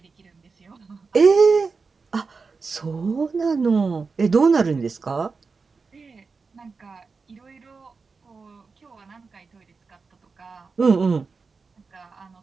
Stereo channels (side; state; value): left; quieter; 4.6 dB